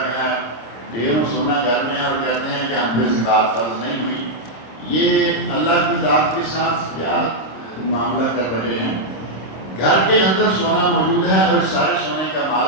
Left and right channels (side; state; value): right; late; 26 ms